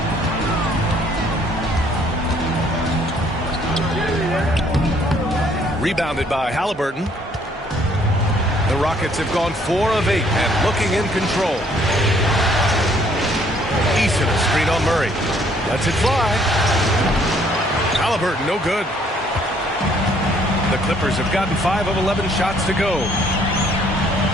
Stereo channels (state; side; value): normal; both; correlation 0.63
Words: Rebounded by Halliburton. The Rockets have gone 4 of 8 and looking in control. Eason, a screen on Murray. Lets it fly. Halliburton, no good. The Clippers have gotten 5 of 11 shots to go.